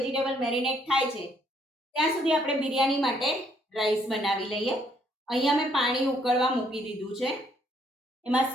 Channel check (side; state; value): both; normal; correlation 0.68